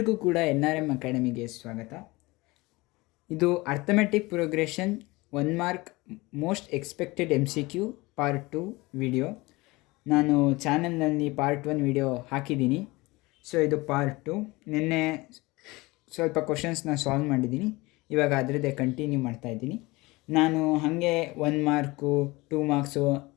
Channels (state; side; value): quieter; right; 22.3 dB